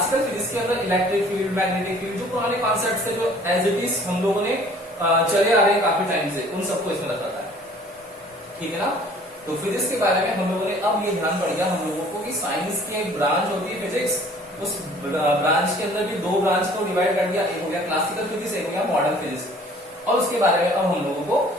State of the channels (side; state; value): both; normal; correlation 0.53